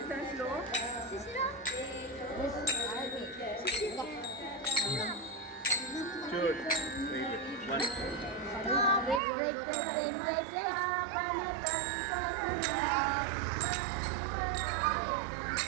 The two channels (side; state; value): left; drops out; at 9.2 s